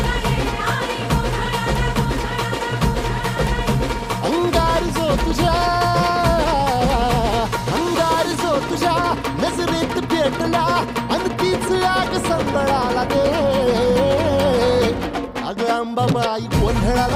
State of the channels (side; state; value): both; identical; correlation 1.00